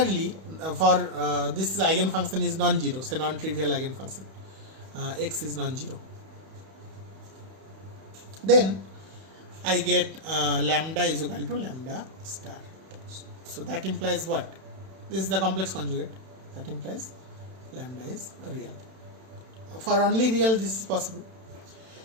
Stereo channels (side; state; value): left; late; 31 ms